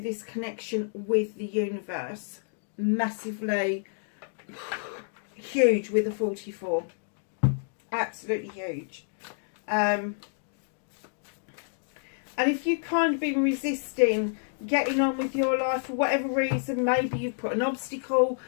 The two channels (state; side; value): silent; right; digital silence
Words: connection with the universe. Massively huge with a 44. Absolutely huge. And if you've kind of been resisting getting on with your life for whatever reason, maybe you've put an obstacle